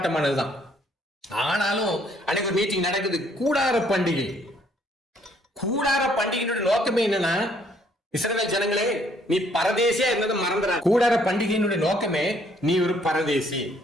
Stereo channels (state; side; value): normal; both; correlation 0.65